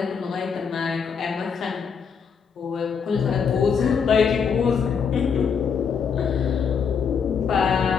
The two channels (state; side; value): quieter; right; 6.4 dB